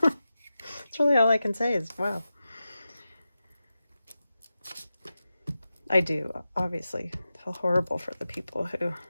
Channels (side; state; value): both; inverted; correlation -0.93